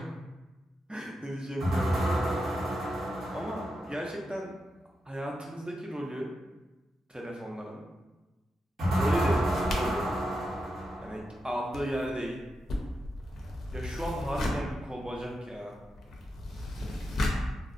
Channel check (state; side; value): normal; both; correlation 0.88